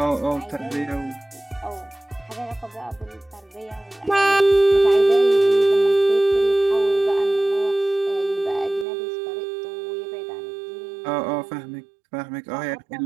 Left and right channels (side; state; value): left; drops out; at 8.8 s